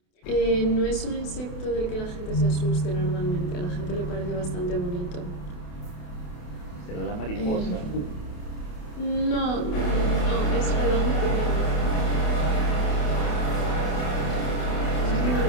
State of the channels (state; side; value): late; right; 28 ms